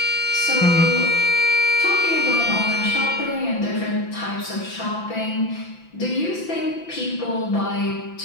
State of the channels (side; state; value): right; late; 5.9 ms